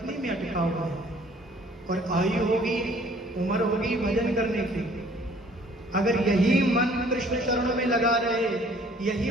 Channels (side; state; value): both; normal; correlation 0.56